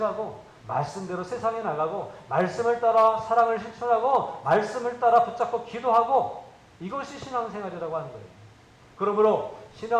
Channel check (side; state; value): both; identical; correlation 1.00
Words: 말씀대로 세상에 나가고 말씀을 따라 사랑을 실천하고 말씀을 따라 붙잡고 기도하고 이것이 신앙생활이라고 하는 거예요. 그러므로